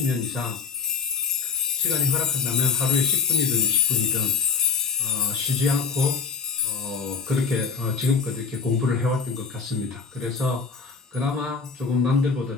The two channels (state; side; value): quieter; right; 5.3 dB